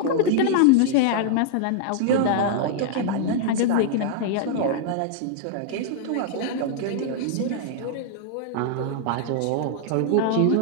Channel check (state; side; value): different; both; correlation -0.01